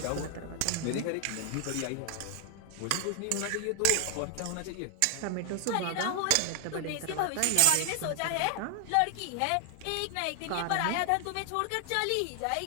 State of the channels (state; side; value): different; both; correlation 0.00